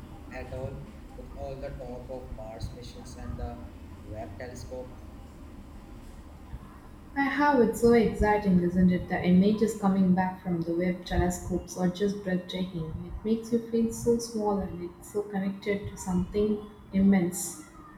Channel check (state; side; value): identical; both; correlation 1.00